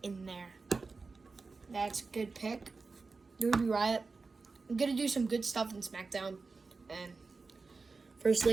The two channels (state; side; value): quieter; left; 4.2 dB